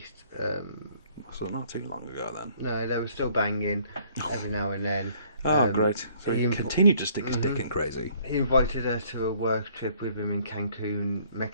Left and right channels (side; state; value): both; inverted; correlation -0.61